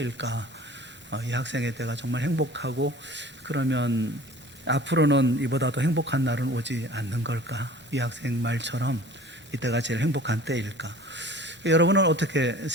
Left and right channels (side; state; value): both; normal; correlation 0.45